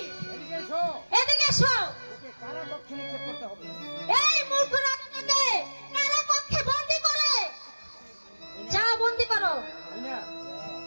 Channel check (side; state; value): both; inverted; correlation -1.00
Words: এদিকে এসো। এদিকে এসো। ওকে কারা কক্ষে নিক্ষেপ করতে হবে। এই মূর্খ রাজাটাকে কারা কক্ষে বন্দী করে। যাও, বন্দী করো। মিনা,